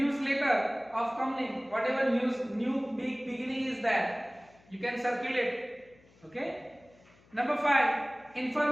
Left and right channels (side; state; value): left; noise; hum, 29 dB below the sound